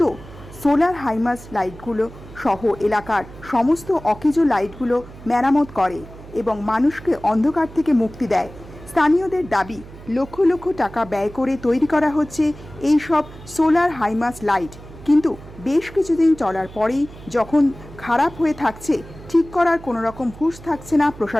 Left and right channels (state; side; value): noise; right; hum, 17 dB below the sound